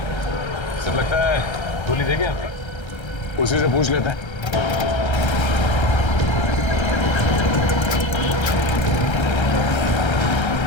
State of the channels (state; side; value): late; right; 1.3 ms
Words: गोली देंगे आपका? उसी से पूछ लेते हैं।